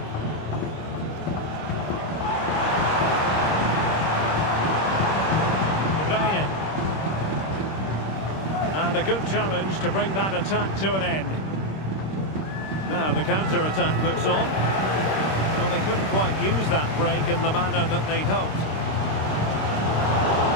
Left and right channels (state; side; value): late; right; 26 ms